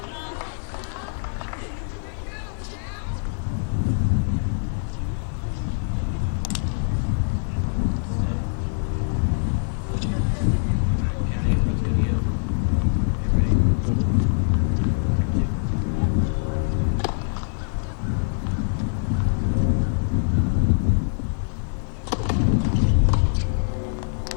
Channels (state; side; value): silent; right; digital silence